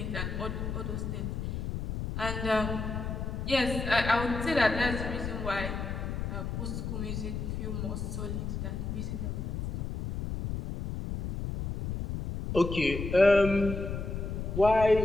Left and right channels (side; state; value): left; noise; rumble, 4 dB below the sound